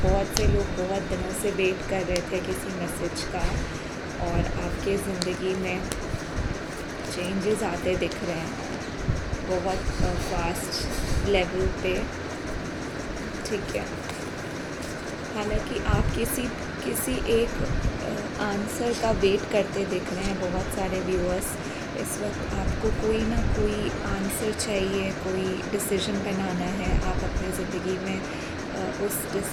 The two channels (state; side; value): identical; both; correlation 1.00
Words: बहुत से लोग बहुत दिनों से वेट कर रहे थे किसी मैसेज का, और आपके ज़िंदगी में चेंजेस आते दिख रहे हैं बहुत फास्ट लेवल पे। ठीक है, हालांकि आप किसी एक आंसर का वेट करते दिख रहे हैं। बहुत सारे व्यूअर्स इस वक्त आपको कोई ना कोई आंसर चाहिए, कोई डिसीजन बनाना है। आप अपनी ज़िंदगी में उस